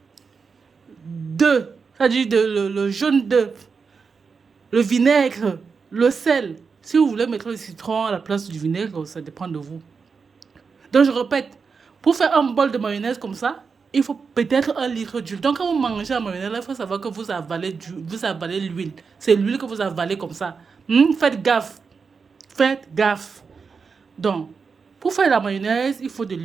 d'œuf, c'est-à-dire le jaune d'œuf, le vinaigre, le sel. Si vous voulez mettre le citron à la place du vinaigre, ça dépend de vous. Donc, je répète, pour faire un bol de mayonnaise comme ça, il faut peut-être 1 litre d'huile. Donc, quand vous mangez la mayonnaise, il faut savoir que vous avalez l'huile. C'est l'huile que vous avalez comme ça. Faites gaffe. Faites gaffe. Donc, pour faire la mayonnaise, il faut de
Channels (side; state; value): left; quieter; 5.3 dB